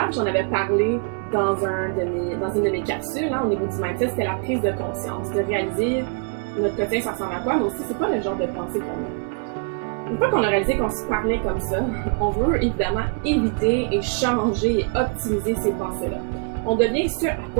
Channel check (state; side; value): quieter; left; 38.8 dB